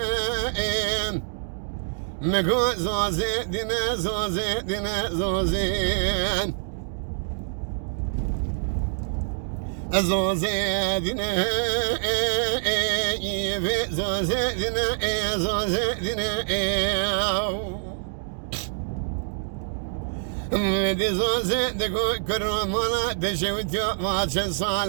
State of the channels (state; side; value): silent; left; digital silence